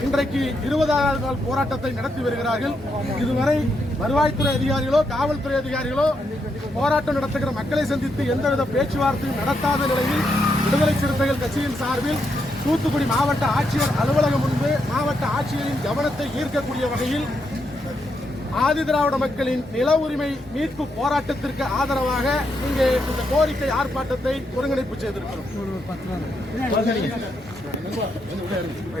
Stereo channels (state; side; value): normal; both; correlation 0.80